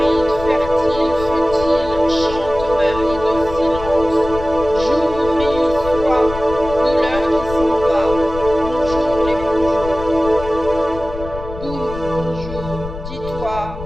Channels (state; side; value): noise; left; rumble, 10 dB below the sound